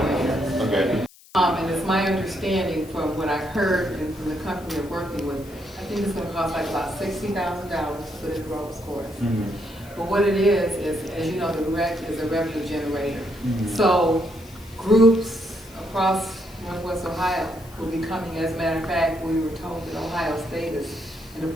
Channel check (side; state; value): left; noise; hiss, 24 dB below the sound